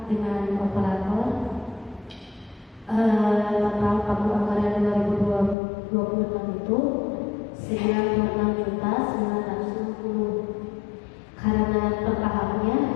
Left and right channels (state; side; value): drops out; right; at 5.6 s